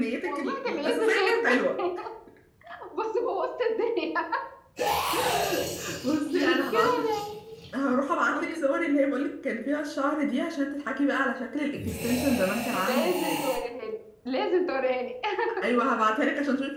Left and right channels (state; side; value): identical; both; correlation 1.00